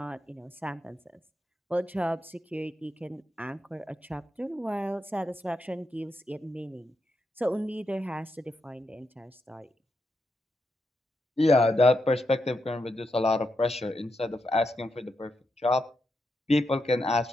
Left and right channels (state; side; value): normal; both; correlation 0.84